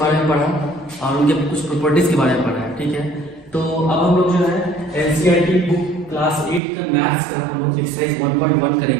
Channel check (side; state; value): left; drops out; at 6.6 s